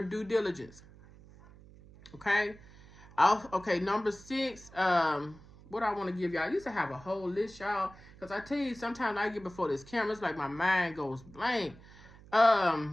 due diligence. Okay? Okay, number 6, what I want to give y'all. I used to have a whole list, y'all, because I tell you, sometimes I get before this camera, it's like my mind goes blank.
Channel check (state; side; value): noise; right; hum, 21 dB below the sound